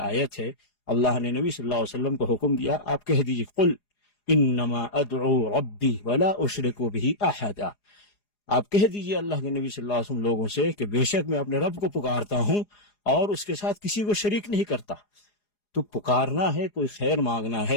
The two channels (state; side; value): late; right; 4.8 ms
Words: ہے، اللہ نے نبی صلی اللہ علیہ وسلم کو حکم دیا، آپ کہہ دیجئے قل انما ادعو ربی ولا اشرک بہ احدا. آپ کہہ دیجئے اللہ کے نبی صلی اللہ علیہ وسلم لوگوں سے کہ بے شک میں اپنے رب کو پکارتا ہوں اور اس کے ساتھ کسی کو شریک نہیں کرتا. تو پکارنا ہے، کوئی خیر مانگنا